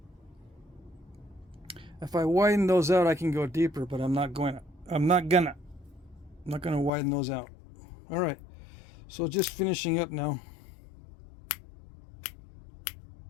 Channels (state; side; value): drops out; right; at 6.9 s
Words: if I widen those out, I can go deeper, but I'm not gonna widen those out. All right, so just finishing up now.